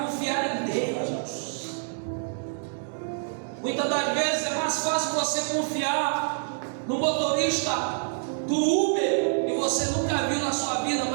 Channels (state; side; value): silent; left; digital silence